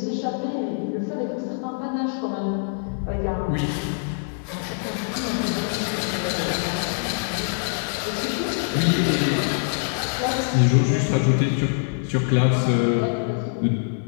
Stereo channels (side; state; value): right; silent; 63 dB below the other